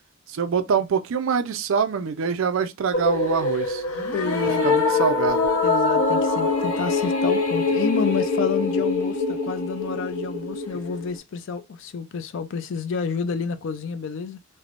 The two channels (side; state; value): both; normal; correlation 0.04